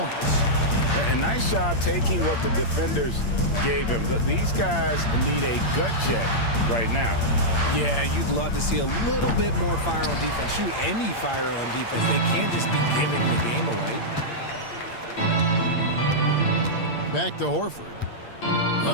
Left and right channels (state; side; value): late; right; 8.7 ms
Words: A nice job taking what the defenders gave him. These guys need a gut check right now. Yeah, you'd love to see a little bit more fire on defense. Shoot, any fire on defense. They can't just be giving the game away. Back to Horford.